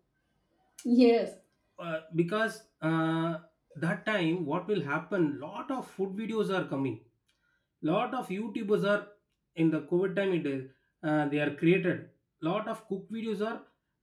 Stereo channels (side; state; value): both; identical; correlation 1.00